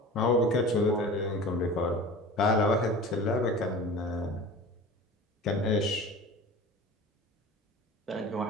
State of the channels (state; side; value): normal; both; correlation 0.38